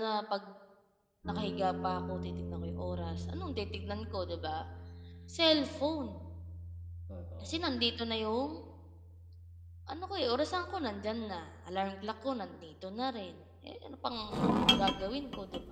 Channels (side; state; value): both; identical; correlation 1.00